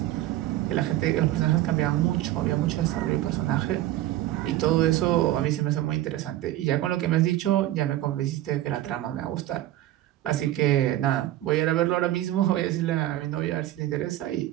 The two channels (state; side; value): quieter; left; 14.5 dB